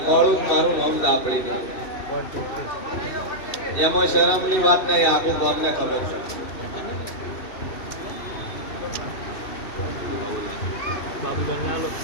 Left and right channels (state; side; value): late; right; 2.6 ms